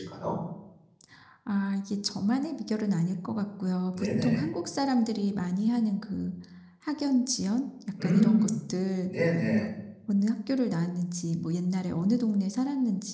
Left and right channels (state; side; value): identical; both; correlation 1.00